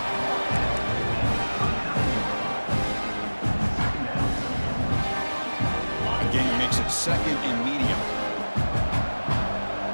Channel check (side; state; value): both; inverted; correlation -1.00